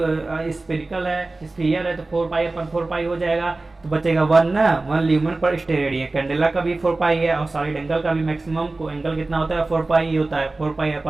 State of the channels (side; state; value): left; quieter; 3.2 dB